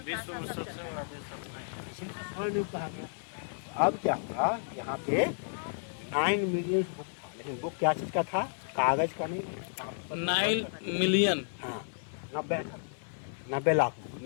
अब क्या हुआ, यहाँ पे 9 मिलियन बुक था, लेकिन बुक क्या चीज का था? कागज का नहीं, 9 मिलियन। हाँ, 90 लाख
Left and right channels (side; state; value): right; silent; 56 dB below the other